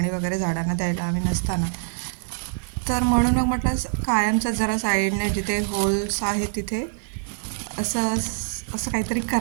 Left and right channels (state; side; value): silent; left; digital silence